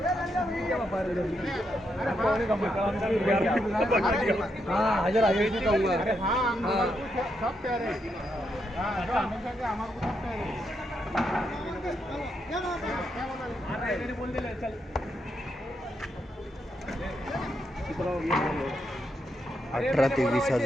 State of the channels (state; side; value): normal; both; correlation 0.81